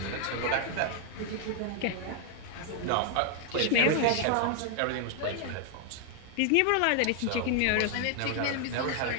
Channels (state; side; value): different; both; correlation 0.00